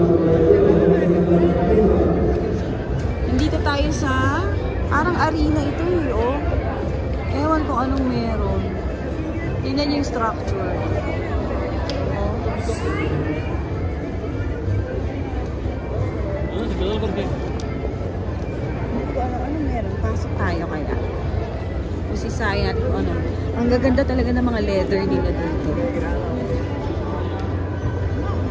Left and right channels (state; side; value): identical; both; correlation 1.00